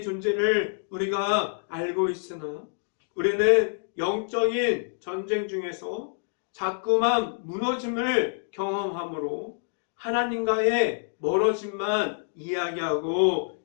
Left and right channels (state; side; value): silent; right; digital silence